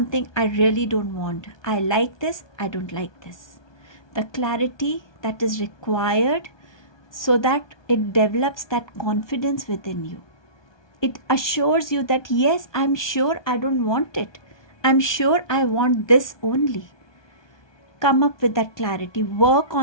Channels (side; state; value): right; late; 1.2 ms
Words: I really don't want. I like this, I don't like this. The clarity that is required so that it develops that confidence within you. It assures you that yes, I'm sure I don't want it. I'm sure I want this only. Come up with that clarity, work